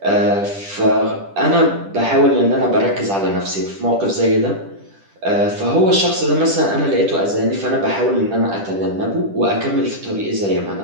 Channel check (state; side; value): late; left; 10 ms